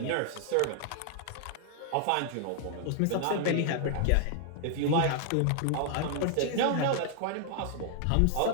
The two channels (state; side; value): different; both; correlation -0.01